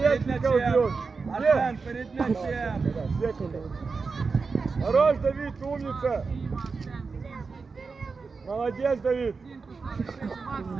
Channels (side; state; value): left; quieter; 4.6 dB